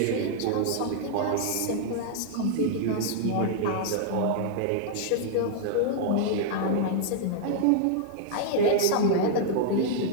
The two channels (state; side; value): different; both; correlation -0.01